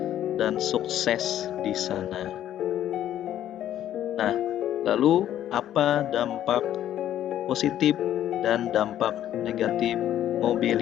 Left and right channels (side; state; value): right; quieter; 11.6 dB